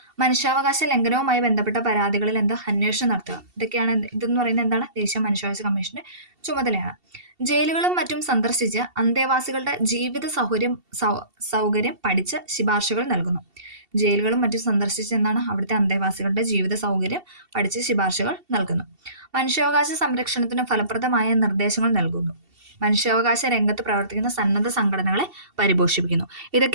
മനുഷ്യാവകാശ ലംഘനവുമായി ബന്ധപ്പെട്ട പരാതികളിൽ എന്താ? അന്വേഷണം നടത്തുക. ഇതൊക്കെയാണ് ഇതെന്ന് പറയുന്നത് എന്താണ്? ദേശീയ മനുഷ്യാവകാശ കമ്മീഷന്റെ ചുമതലയാണ്. ജയിലുകളും മറ്റും സന്ദർശിച്ച് അന്തേവാസികളുടെ ജീവിത സൗകര്യം പഠിച്ച് ശുപാർശകൾ നൽകുന്നു. ജയിലുകളും മറ്റും സന്ദർശിച്ച് എന്താണ്? അവിടുത്തെ അന്തേവാസികളുടെ ജീവിത സൗകര്യം പഠിച്ച് ശുപാർശകൾ നൽകുന്നു. മനുഷ്യാവകാശ സംരക്ഷണത്തിന് ഫലപ്രദമായ നിർദ്ദേശങ്ങൾ നൽകുന്നു. മനുഷ്യാവകാശ രംഗത്ത് പ്രവർത്തിക്കുന്ന സന്നദ്ധ സംഘടനകളെ പരിപോഷിപ്പിക്കുന്നു.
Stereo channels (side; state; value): left; late; 2.7 ms